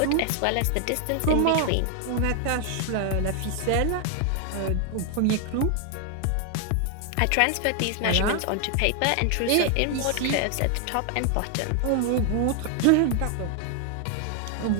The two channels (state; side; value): different; both; correlation 0.00